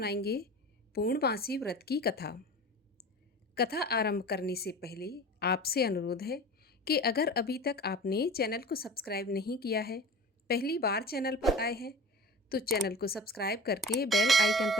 पूर्णमासी व्रत की कथा। कथा आरंभ करने से पहले आपसे अनुरोध है कि अगर अभी तक आपने चैनल को सब्सक्राइब नहीं किया है, पहली बार चैनल पर आए हैं, तो चैनल को सब्सक्राइब करके बेल आइकन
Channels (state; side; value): normal; both; correlation 0.36